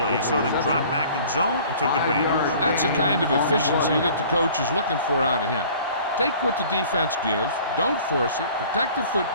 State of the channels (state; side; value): inverted; both; correlation -0.49